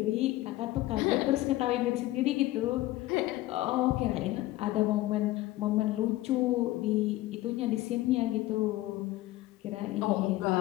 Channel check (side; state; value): right; quieter; 17.0 dB